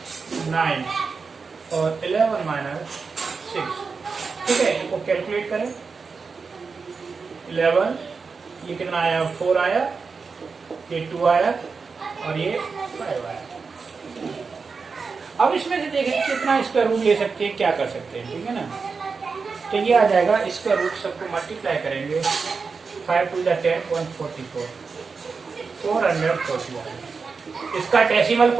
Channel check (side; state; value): left; quieter; 4.9 dB